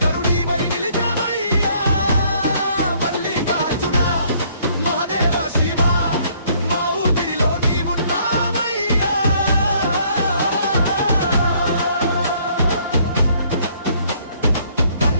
నిలిచావయ్యా మల్లికార్జున మహాదేవ శివ మా ఊపిరిలో నీవున్నావయ్యా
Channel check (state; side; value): inverted; both; correlation -0.63